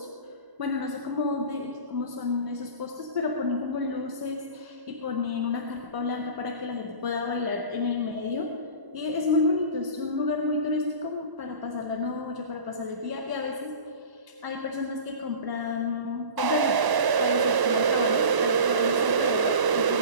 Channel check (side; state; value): left; late; 1.0 ms